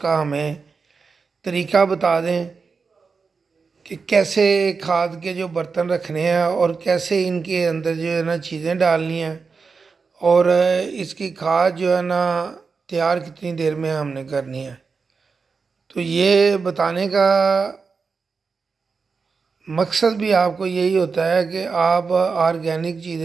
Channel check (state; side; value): quieter; left; 4.9 dB